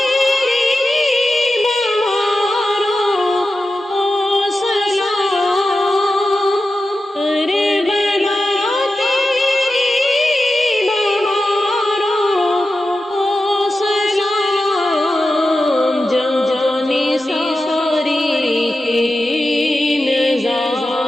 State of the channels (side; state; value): both; normal; correlation 0.92